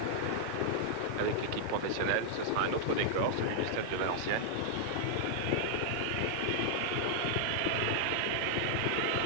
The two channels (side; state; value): both; different; correlation -0.01